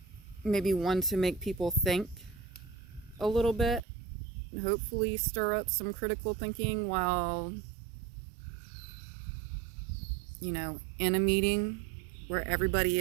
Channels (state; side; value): drops out; left; at 3.8 s